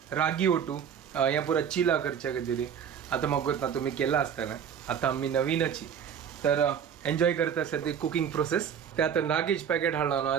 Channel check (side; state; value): left; quieter; 8.1 dB